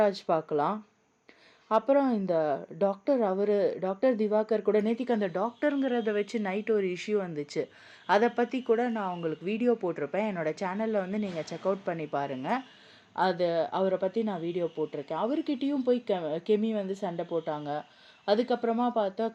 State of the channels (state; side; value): identical; both; correlation 1.00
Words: பார்க்கலாம், அப்புறம் இந்த டாக்டர் திவாகர் கூட நேத்திக்கு அந்த டாக்டருங்கிறத வச்சு நைட் ஒரு இஷ்யூ வந்துச்சு. அதை பற்றி கூட நான் உங்களுக்கு வீடியோ போட்டிருப்பேன். என்னோடய சேனலில் வந்து நீங்கள் செக் அவுட் பண்ணி பாருங்கள். அவரை பற்றி நான் வீடியோ போட்டிருக்கேன். அவர்கிட்டையும் போய் கெமி வந்து சண்டை போட்டாங்க. அதுக்கப்புறமா பார்த்தா